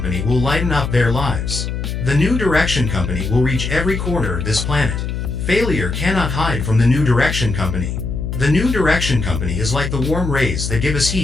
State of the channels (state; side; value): noise; left; hum, 3 dB below the sound